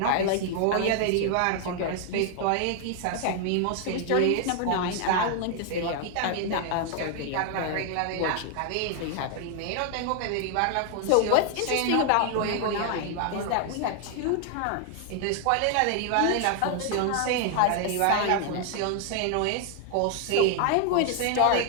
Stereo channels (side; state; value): both; different; correlation 0.00